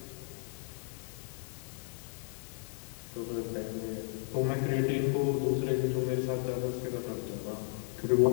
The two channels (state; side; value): silent; right; digital silence